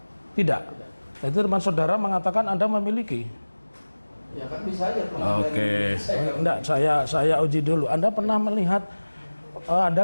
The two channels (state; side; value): inverted; both; correlation -1.00